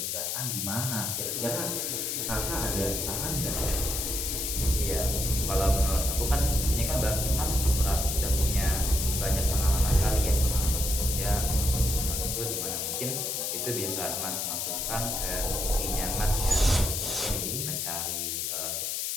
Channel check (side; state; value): left; noise; hiss, 1 dB below the sound